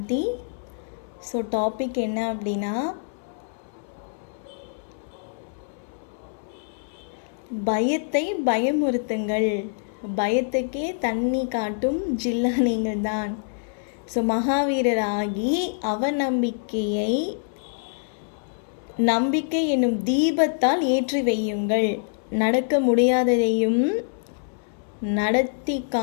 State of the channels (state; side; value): silent; right; 62 dB below the other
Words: ஸோ டாபிக் என்ன அப்படின்னா, பயத்தை பயமுறுத்துங்கள், பயத்துக்கே தண்ணி காட்டும் ஜில்லா நீங்கள் தான். ஸோ மகாவீரராகி அவநம்பிக்கையை நம்பிக்கை என்னும் தீபத்தால் ஏற்றி வையுங்கள். நடக்க முடியாததையும் நடத்தி